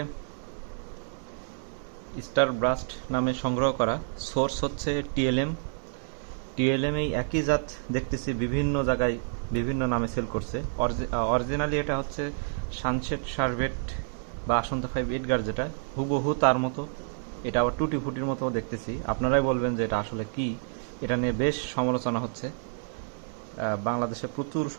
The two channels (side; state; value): left; silent; digital silence